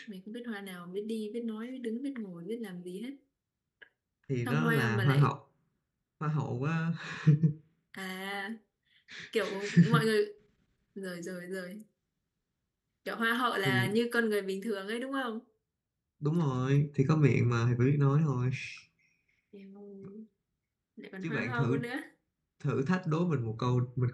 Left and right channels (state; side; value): identical; both; correlation 1.00